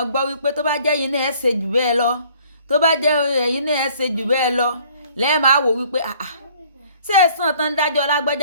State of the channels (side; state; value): both; inverted; correlation -0.57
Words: gbọ́ wípé tó bá jẹ́ yín náà ẹ̀ ṣe jù bẹ́ẹ̀ lọ tó bá jẹ́ ẹ̀yin náà ẹ̀ ṣe jù bẹ́ẹ̀ lọ lẹ́ẹ̀mọ àwò wípé ṣé ẹ̀sán tán dájọ́